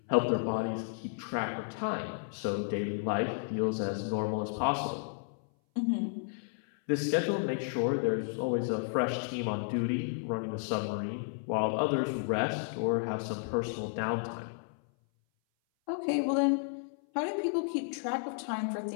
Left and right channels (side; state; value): right; silent; 56 dB below the other